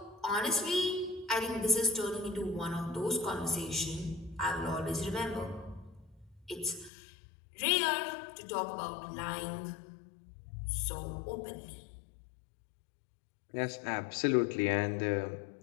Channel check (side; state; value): right; drops out; at 6.9 s